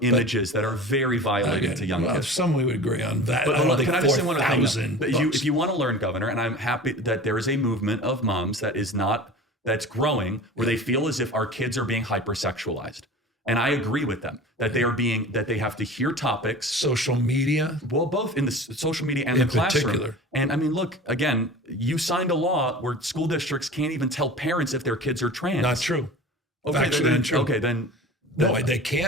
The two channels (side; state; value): both; normal; correlation 0.37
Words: images that are very violating to young kids. Some we would agree on that. But can I just say one other thing? If you want to learn, Governor, and I'm happy that there is a movement of moms that's growing where they feel as if our kids are being hypersexualized. And I agree with them that they have to hear topics. Social media? Well, both in the social media and the classroom. Particular. And I mean, look, again, you signed a law where school districts can't even tell parents if their kids are trans. Not true. Factually untrue. Okay, then. No, they